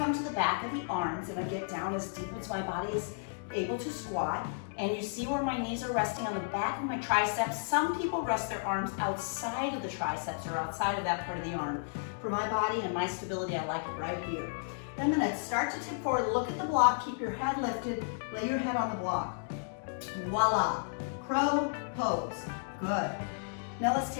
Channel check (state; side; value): silent; right; digital silence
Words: to the back of the arms, and I get down as deep as my body is able to squat. And you see where my knees are resting on the back of my triceps. Some people rest their arms outside of the triceps or outside of that part of the arm. For my body and my stability, I like it right here. Then I'm going to start to tip forward, look at the block, keep your head lifted, lay your head on the block. Voila, crow pose, good. Now let's